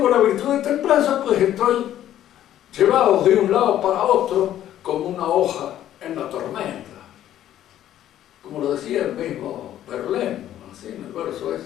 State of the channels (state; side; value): quieter; right; 12.0 dB